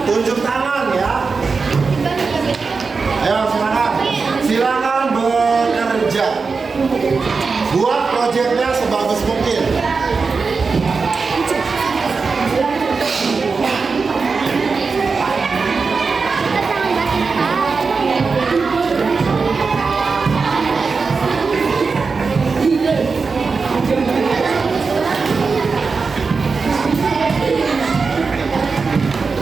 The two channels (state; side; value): quieter; left; 4.7 dB